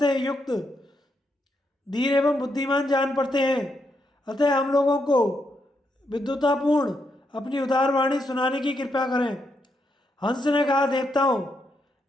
युक्त धीर एवं बुद्धिमान जान पड़ते हैं। अतः हम लोगों को विद्वतापूर्ण अपनी उदार वाणी सुनाने की कृपा करें। हंस ने कहा, देवताओं,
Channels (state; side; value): normal; both; correlation 0.80